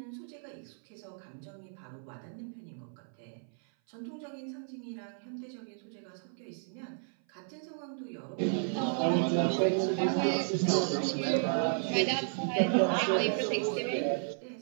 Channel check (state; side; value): silent; left; 56 dB below the other